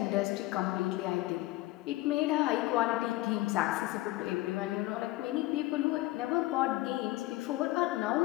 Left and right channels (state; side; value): quieter; right; 18.5 dB